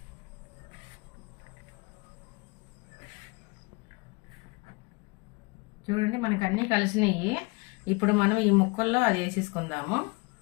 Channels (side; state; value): right; quieter; 27.8 dB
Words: చూడండి మనకి అన్నీ కలిసినాయి. ఇప్పుడు మనం ఈ ముక్కల్లో అది వేసేసుకుందాము.